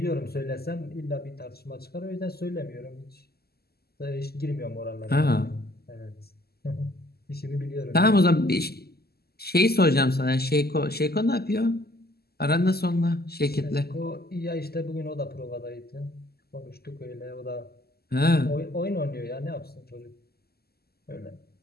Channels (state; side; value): late; right; 0.46 ms